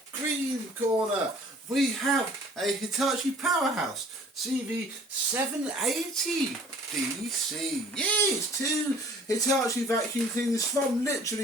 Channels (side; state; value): both; normal; correlation 0.52